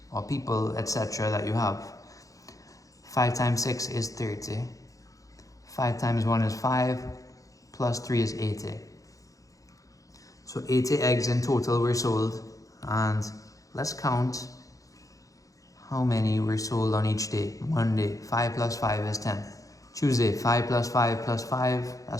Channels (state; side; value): late; right; 0.16 ms